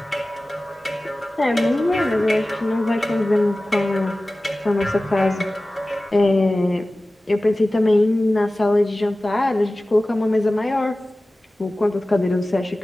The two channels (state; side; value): normal; both; correlation 0.97